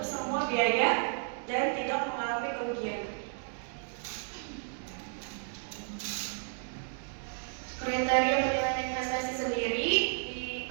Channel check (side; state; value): left; silent; 56 dB below the other